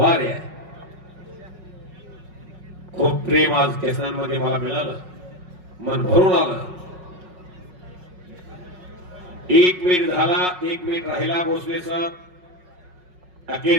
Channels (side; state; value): left; late; 5.5 ms